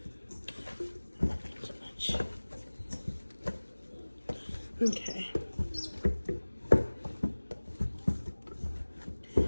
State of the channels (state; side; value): inverted; both; correlation -1.00